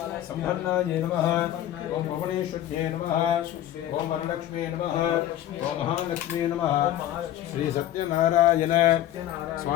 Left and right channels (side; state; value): right; quieter; 12.6 dB